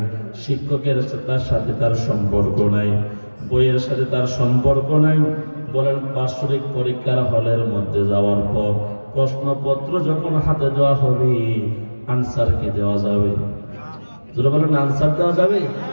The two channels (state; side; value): inverted; both; correlation -1.00